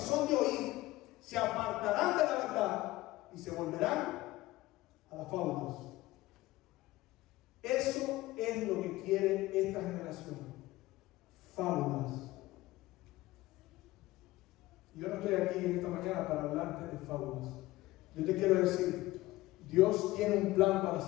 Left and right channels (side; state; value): right; quieter; 18.0 dB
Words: de oír, se apartarán de la verdad y se volverán a las fábulas. Eso es lo que quiere esta generación. Fábulas. Yo no estoy aquí en esta mañana para hablarte de fábulas. Yo te quiero decir, Dios tiene un plan para